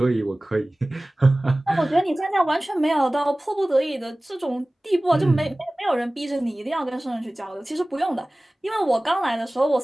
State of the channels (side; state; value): both; normal; correlation 0.98